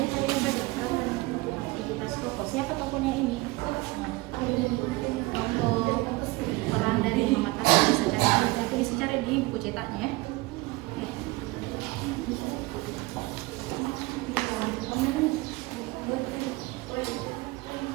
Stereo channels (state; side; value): quieter; left; 22.2 dB